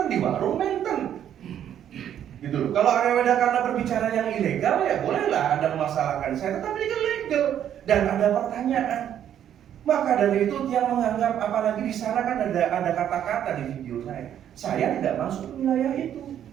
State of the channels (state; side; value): quieter; left; 10.1 dB